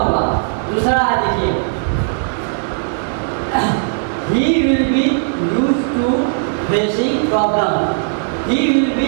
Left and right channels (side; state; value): left; silent; 55 dB below the other